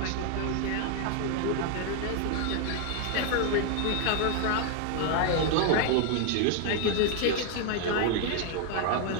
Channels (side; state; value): both; different; correlation 0.00